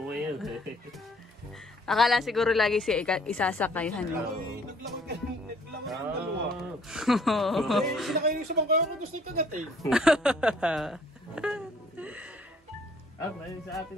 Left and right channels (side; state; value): both; normal; correlation 0.60